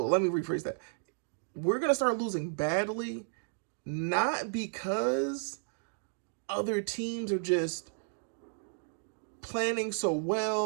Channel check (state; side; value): silent; left; digital silence